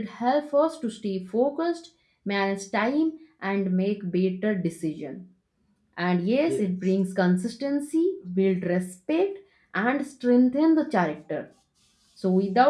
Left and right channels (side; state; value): both; identical; correlation 1.00